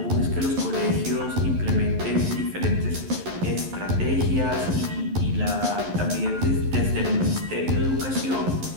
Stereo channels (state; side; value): late; left; 11 ms